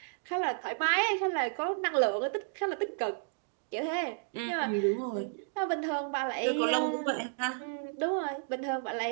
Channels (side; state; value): left; silent; digital silence